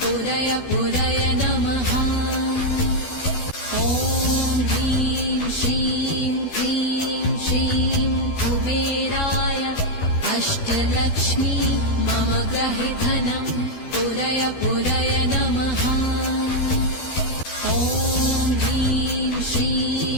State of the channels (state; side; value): late; right; 12 ms